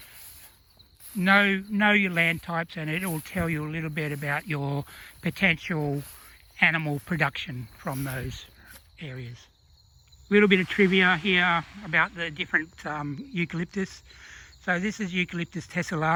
know your land types, and it will tell you a little bit about your potential animal production from those areas. A little bit of trivia here about the different eucalyptus. So this is Eucalyptus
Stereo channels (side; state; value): both; identical; correlation 1.00